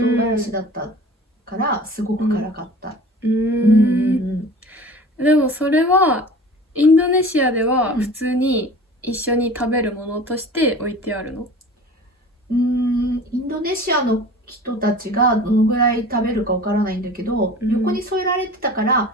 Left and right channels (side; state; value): both; normal; correlation 0.41